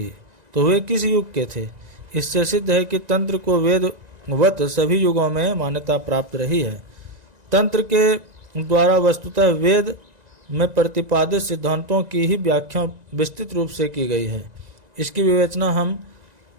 तो वे किस युग के थे? इससे सिद्ध है कि तंत्र को वेदवत सभी युगों में मान्यता प्राप्त रही है। तंत्र के द्वारा वस्तुतः वेद में प्रतिपादित सिद्धांतों की ही व्याख्या विस्तृत रूप से की गई है। इसकी विवेचना हम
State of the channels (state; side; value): late; left; 1.9 ms